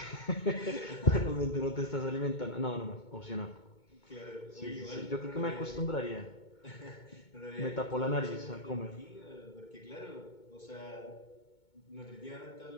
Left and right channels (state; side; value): late; right; 2.2 ms